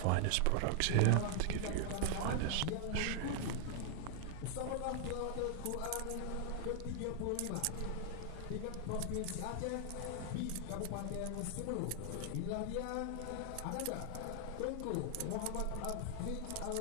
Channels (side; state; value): both; different; correlation 0.00